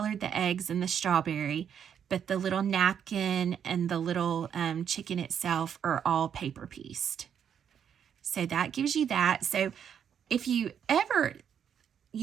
the eggs and the strawberry, but the little napkin and the little chicken itself are all paper pieced. So that gives you that. So if you ever,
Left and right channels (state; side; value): quieter; left; 8.3 dB